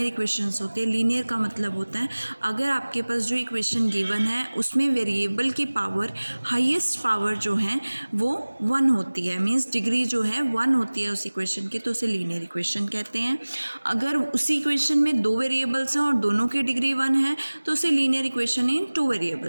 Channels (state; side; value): inverted; both; correlation -1.00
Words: इक्वेशंस होते हैं। लीनियर का मतलब होता है अगर आपके पास जो इक्वेशन गिवन है उसमें वेरिएबल की पावर हाईएस्ट पावर जो है वो 1 होती है, मीन्स डिग्री जो है 1 होती है उस इक्वेशन की, तो उसे लीनियर इक्वेशन कहते हैं। अगर उसी इक्वेशन में 2 वेरिएबल्स हैं और दोनों की डिग्री 1 है तो उसे लीनियर इक्वेशन इन 2